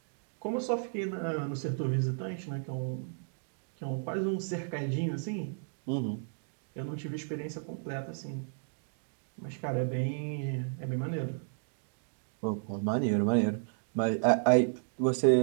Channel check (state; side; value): silent; left; digital silence